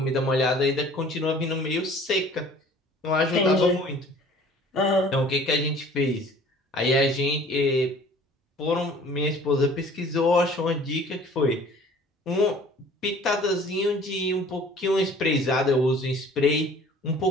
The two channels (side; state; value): both; normal; correlation 0.50